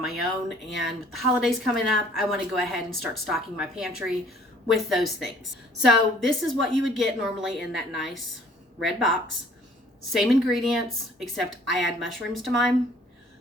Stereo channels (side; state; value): both; normal; correlation 0.56